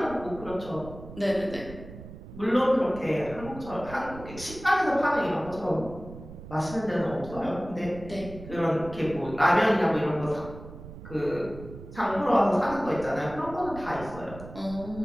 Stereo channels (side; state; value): right; noise; rumble, 14 dB below the sound